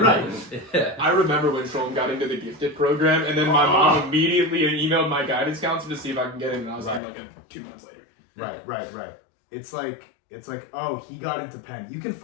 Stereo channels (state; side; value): drops out; right; at 7.0 s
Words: Yeah. I remember when Shulman got into the gifted program, and then my mom immediately emailed my guidance counselor to see if I can get in, and I was in like 2 months later. Right. It's like, oh, he got into Penn. You can